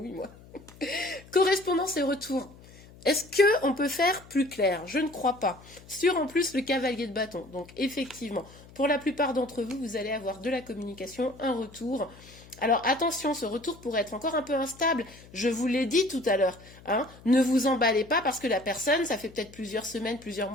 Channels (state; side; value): noise; left; hum, 22 dB below the sound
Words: moi. Correspondance et retour. Est-ce qu'on peut faire plus clair? Je ne crois pas. Sur en plus le cavalier de bâton. Donc effectivement, pour la plupart d'entre vous, vous allez avoir de la communication, un retour. Alors attention, ce retour pourrait être encore un peu instable. Je vous l'ai dit tout à l'heure, hein. Ne vous emballez pas parce que la personne, ça fait peut-être plusieurs semaines, plusieurs